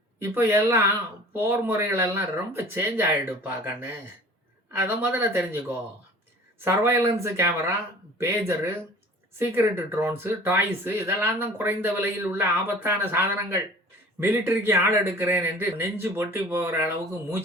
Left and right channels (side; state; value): both; normal; correlation 0.45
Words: இப்போ எல்லாம் போர் முறைகளெல்லாம் ரொம்ப சேஞ்ச் ஆகிடுப்பா கண்ணு, அதை முதல்ல தெரிஞ்சுக்கோ. சர்வைலன்ஸு கேமரா, பேஜரு, சீக்ரெட் ட்ரோன்ஸு, டாய்ஸு இதெல்லாம் தான் குறைந்த விலையில் உள்ள ஆபத்தான சாதனங்கள். மிலிட்டரிக்கு ஆள் எடுக்கிறேன் என்று நெஞ்சு பொட்டி போகிற அளவுக்கு